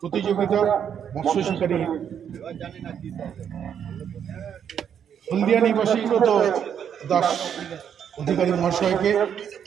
প্রতিযোগিতা মৎস্য শিকারী হলদিয়া নিবাসী সুব্রত দাস অধিকারী মহাশয়কে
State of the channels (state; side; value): quieter; left; 8.4 dB